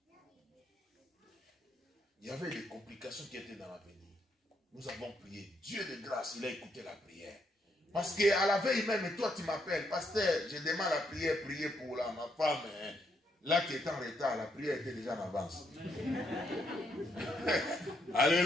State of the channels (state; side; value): normal; both; correlation 0.76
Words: Il y avait des complications qui étaient dans l'avenir. Nous avons prié. Dieu de grâce, il a écouté la prière. Parce qu'à la veille même, toi tu m'appelles, pasteur, je demande la prière, prier pour ma femme. Hein. Là qui est en retard, la prière était déjà en avance.